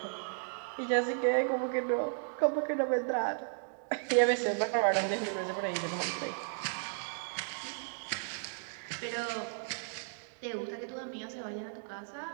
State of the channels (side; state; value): left; silent; digital silence